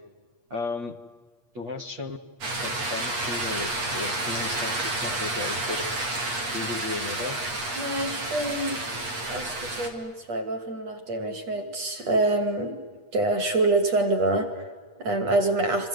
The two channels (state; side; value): late; left; 8.4 ms